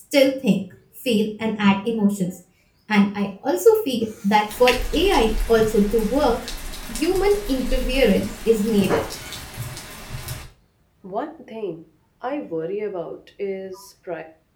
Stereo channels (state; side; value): identical; both; correlation 1.00